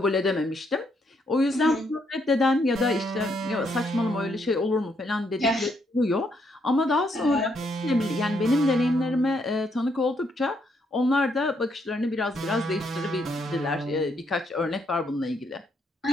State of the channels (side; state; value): both; normal; correlation 0.74